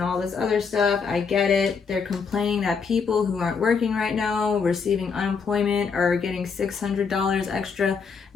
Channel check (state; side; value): quieter; right; 5.7 dB